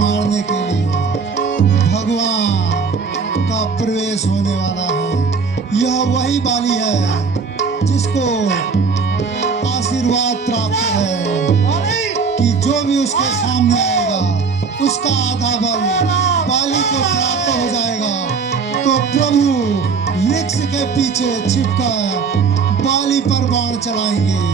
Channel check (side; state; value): left; quieter; 5.2 dB